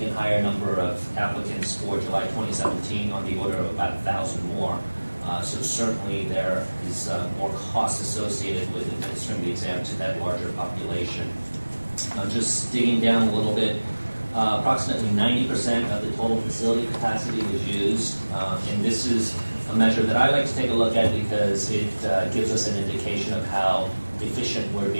higher number of applicants for July 2017 on the order of about 1,000 more. So certainly there is more cost associated with administering the exam to that larger population. Just digging down a little bit, approximately 90% of the total facility capacity was used, and this is a measure that I like to take a look at because it gives us an indication of how efficient we're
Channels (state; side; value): inverted; both; correlation -1.00